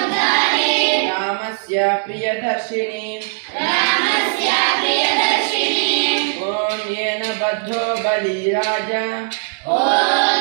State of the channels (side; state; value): left; silent; digital silence